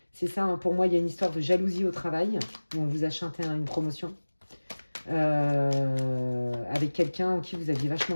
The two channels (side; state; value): both; inverted; correlation -1.00